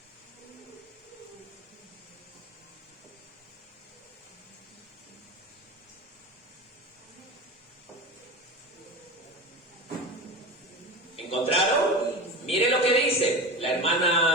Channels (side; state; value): both; normal; correlation 0.28